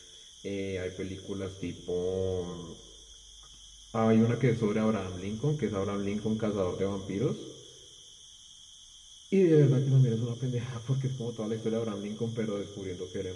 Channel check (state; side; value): identical; both; correlation 1.00